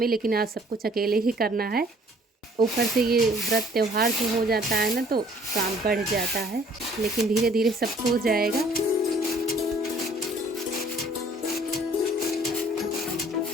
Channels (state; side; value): normal; both; correlation 0.57